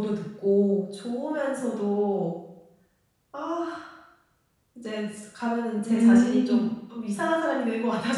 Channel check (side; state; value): both; identical; correlation 1.00